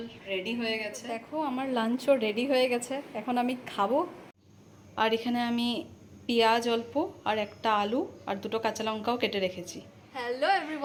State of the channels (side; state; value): both; identical; correlation 1.00